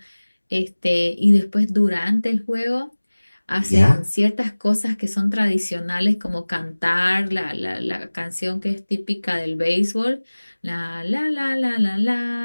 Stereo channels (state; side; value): inverted; both; correlation -1.00